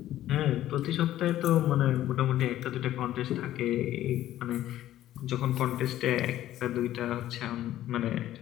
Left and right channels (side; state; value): right; quieter; 13.3 dB